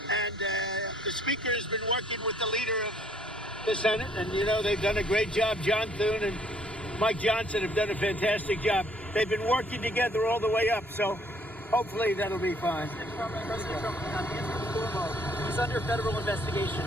And the Speaker has been working with the leader of the Senate. And, they've done a great job. John Thune and Mike Johnson have done a fantastic job. They've been working together all the way up. So hopefully that'll be fine. President Trump is under federal investigation.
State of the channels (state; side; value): normal; both; correlation 0.63